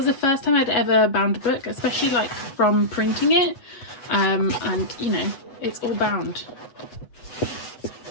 the first time I'd ever bound a book, especially like from printing it, and you know, it's all bound,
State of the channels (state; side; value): late; right; 8.2 ms